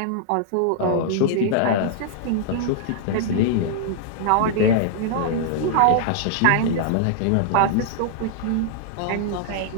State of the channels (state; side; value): different; both; correlation -0.01